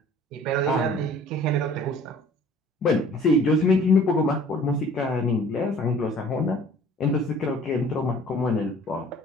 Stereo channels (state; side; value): normal; both; correlation 0.51